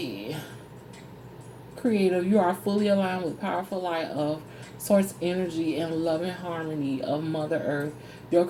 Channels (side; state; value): both; identical; correlation 1.00